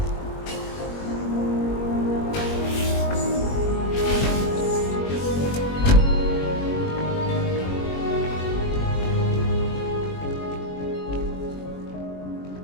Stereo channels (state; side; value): late; right; 21 ms